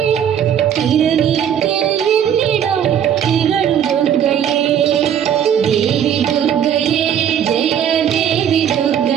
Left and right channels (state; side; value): quieter; left; 9.2 dB